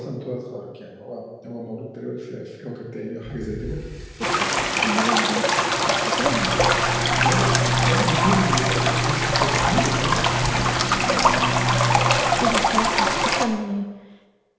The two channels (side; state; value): both; identical; correlation 1.00